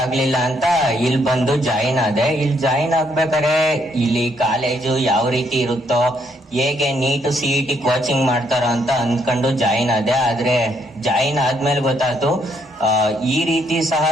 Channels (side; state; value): both; normal; correlation 0.72